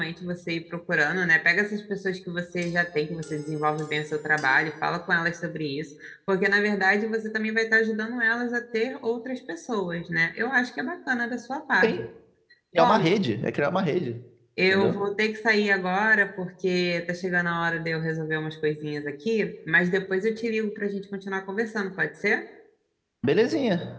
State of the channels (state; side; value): identical; both; correlation 1.00